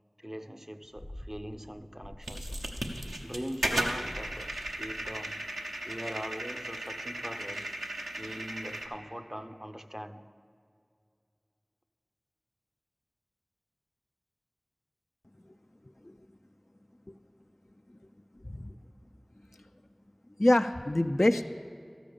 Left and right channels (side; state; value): both; normal; correlation 0.97